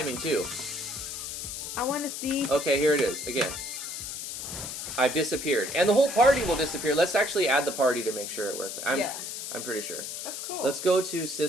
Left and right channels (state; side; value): noise; left; hiss, 6 dB below the sound